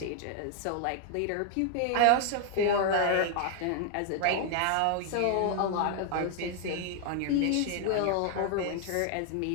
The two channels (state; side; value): different; both; correlation 0.00